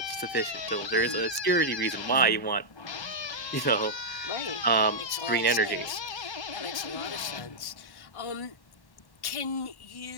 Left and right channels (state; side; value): late; right; 1.1 ms